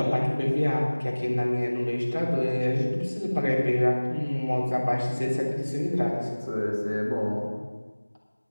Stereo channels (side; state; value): both; inverted; correlation -1.00